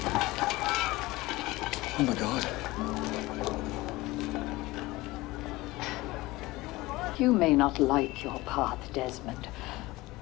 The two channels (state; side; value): quieter; right; 19.9 dB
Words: Oh my God. You may not like your path, Desmond,